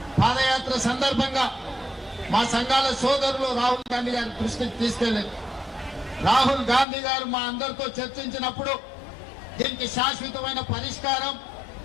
పాదయాత్ర సందర్భంగా మా సంఘాల సోదరులు రాహుల్ గాంధీ గారి దృష్టికి తీసుకెళ్లారు. రాహుల్ గాంధీ గారు మా అందరితో చర్చించినప్పుడు దీనికి శాశ్వతమైన పరిష్కారం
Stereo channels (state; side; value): drops out; right; at 6.9 s